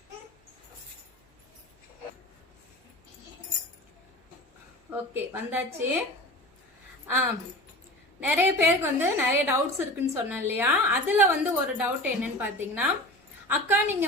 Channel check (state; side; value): normal; both; correlation 0.34